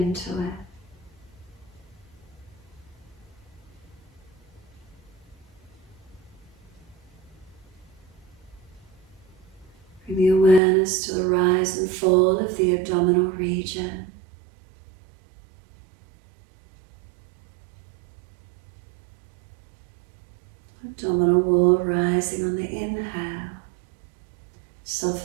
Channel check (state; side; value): drops out; left; at 10.6 s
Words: it. Bring the awareness to the rise and fall of the abdominal region. Abdominal wall rising on the inhale,